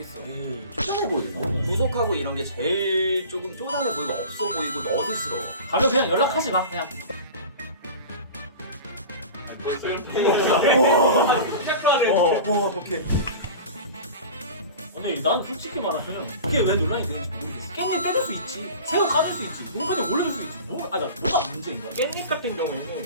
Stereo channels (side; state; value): both; inverted; correlation -0.35